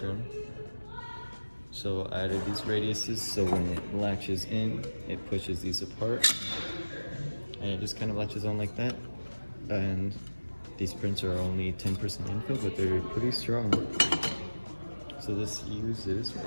So I added these radiuses so when it latches in, it pushes these apart. And it just kind of latches on like that. And these prints are only 10% infill, but they're pretty strong. So this uses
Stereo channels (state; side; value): inverted; both; correlation -1.00